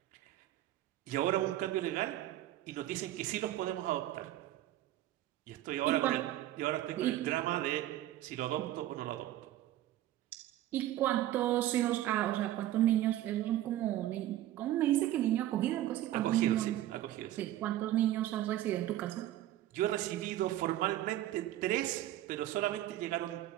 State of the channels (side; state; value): left; quieter; 13.8 dB